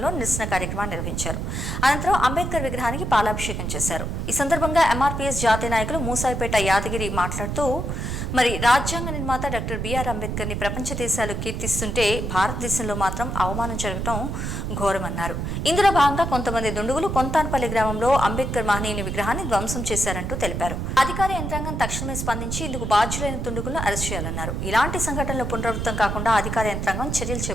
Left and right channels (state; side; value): noise; right; rumble, 3 dB below the sound